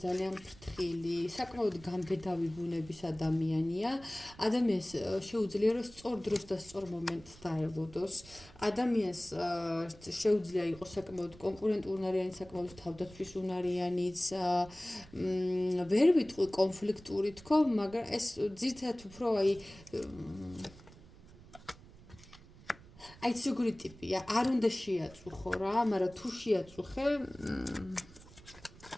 ძალიან ფრთხილი, საკმაოდ გამბედავი ბუნების ადამიანია. ადამიანს შეუძლია რომ სწორ დროს და სწორ მომენტს დაელოდოს. ადამიანს შეუძლია იყოს საკმაოდ კონკურენტუნარიანი, საკმაოდ თავდაცვის უნარიანიც. ვერ ვიტყვი კონფლიქტური თქო, მაგრამ ეს ძირითადად უფრო აი როგორი ტიპია, არ უნდა შეაწუხო რა, მაგრამ თუ შეაწუხე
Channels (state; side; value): noise; right; rumble, 21 dB below the sound